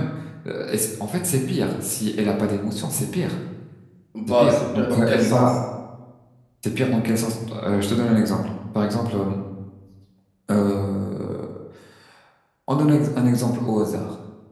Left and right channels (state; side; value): identical; both; correlation 1.00